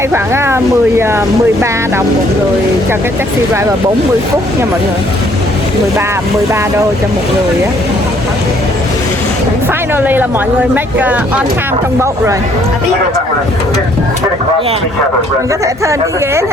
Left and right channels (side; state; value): both; normal; correlation 0.64